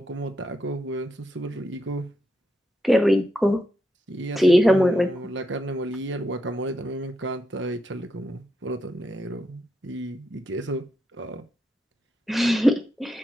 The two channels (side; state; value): both; normal; correlation 0.84